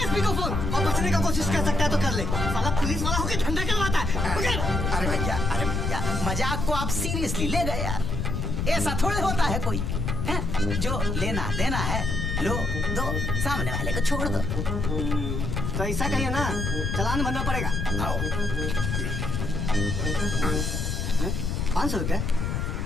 को फोन, और बचने का कोशिश कर सकता है तो कर ले। साला पुलिस वाला होकर झंडा करवाता है। अरे भैया, मजाक को आप सीरियसली ले गए यार। ऐसा थोड़े होता है कोई है? जो लेना देना है लो दो, सामने वाले को छोड़ दो। तो ऐसा कहिए ना, चालान भरना पड़ेगा। आओ। 500 रुपया?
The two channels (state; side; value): noise; left; rumble, 1 dB below the sound